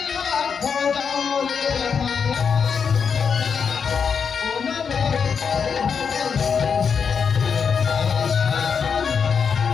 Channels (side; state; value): right; quieter; 6.3 dB